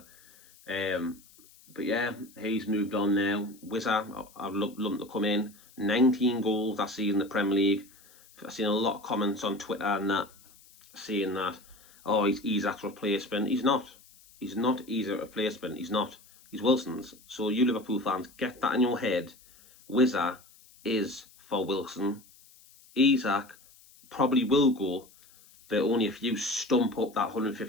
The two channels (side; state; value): left; noise; hiss, 26 dB below the sound